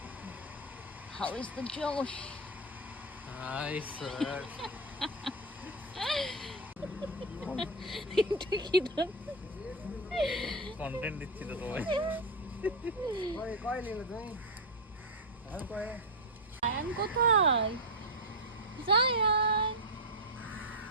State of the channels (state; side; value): normal; both; correlation 0.05